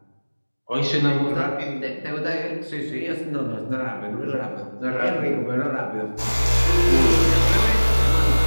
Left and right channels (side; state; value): both; inverted; correlation -1.00